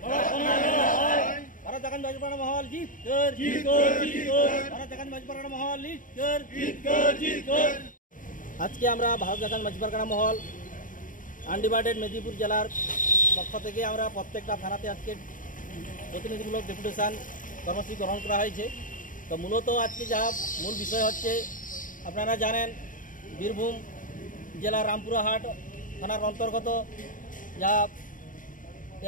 আজকে আমরা ভারত জাকাত মাঝি পারগানা মহল আনডিভাইডেড মেদিনীপুর জেলার পক্ষ থেকে আমরা প্রত্যেকটা থানাতে আজকে প্রতিনিধিমূলক ডেপুটেশন কর্মসূচি গ্রহণ করা হয়েছে। তো মূলত আজকে যা মূল বিষয় হচ্ছে, আপনারা জানেন বীরভূম জেলার রামপুরহাট থানার অন্তর্গত যা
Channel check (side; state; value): right; late; 0.39 ms